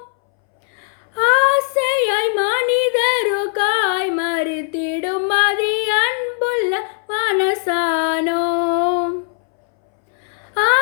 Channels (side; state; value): right; silent; 64 dB below the other